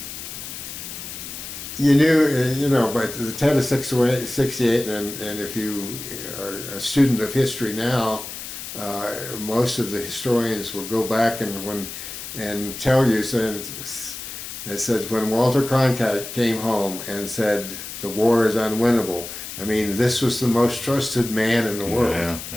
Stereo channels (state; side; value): noise; left; hiss, 9 dB below the sound